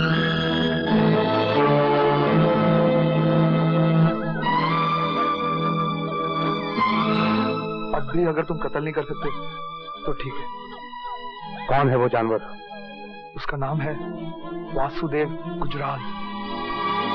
अब भी अगर तुम कत्ल नहीं कर सकते तो ठीक है। कौन है वो जानवर? उसका नाम है वासुदेव गुजराल।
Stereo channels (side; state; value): both; identical; correlation 1.00